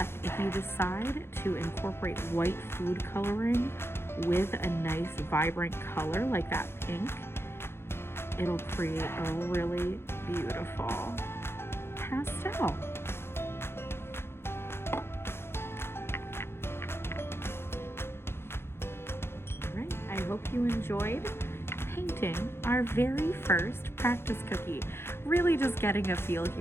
if you decide to incorporate white food coloring with a nice vibrant color like that pink, it'll create a really beautiful pastel. I hope you enjoyed painting our very first practice cookie. Really just getting a feel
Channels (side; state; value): right; late; 0.12 ms